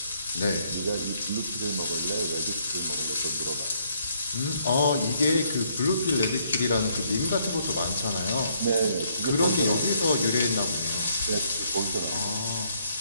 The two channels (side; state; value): both; inverted; correlation -0.69